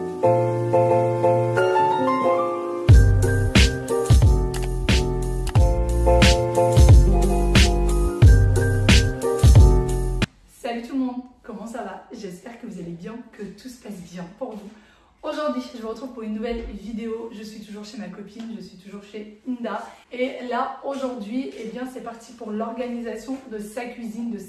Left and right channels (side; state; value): both; identical; correlation 1.00